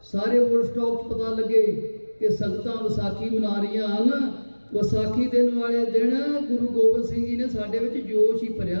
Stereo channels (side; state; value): both; inverted; correlation -1.00